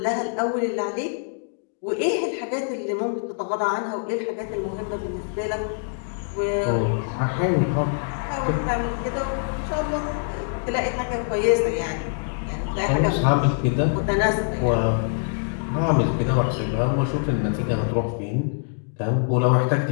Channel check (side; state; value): right; silent; digital silence